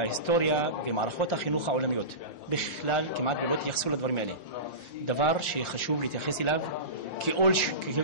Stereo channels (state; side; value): late; right; 5.7 ms